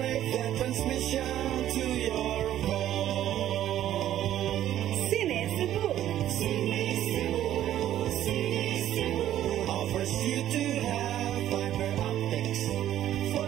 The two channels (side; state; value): left; quieter; 12.1 dB